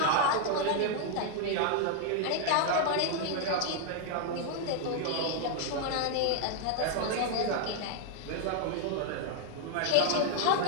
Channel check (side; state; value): both; different; correlation 0.00